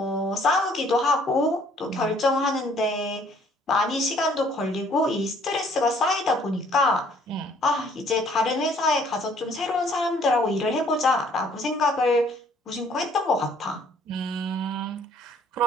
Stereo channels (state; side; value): normal; both; correlation 0.60